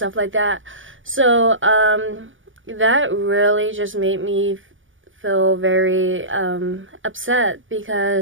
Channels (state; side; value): late; left; 0.57 ms